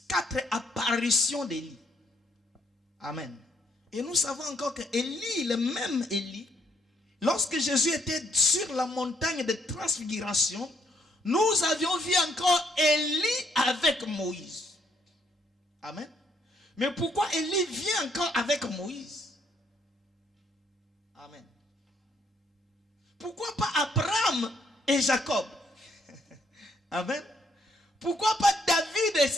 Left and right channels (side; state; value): both; normal; correlation 0.70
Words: 4 apparitions d'Élie. Amen. Et nous savons encore que Élie, le même Élie, lorsque Jésus était sur la montagne de transfiguration, nous avions vu encore Élie avec Moïse. Amen. Mais pourquoi Élie vient encore avec Moïse? Amen. Pourquoi pas Abraham et Jacob? Amen. Pourquoi pas David et